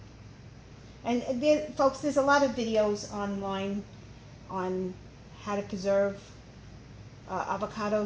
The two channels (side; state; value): both; identical; correlation 1.00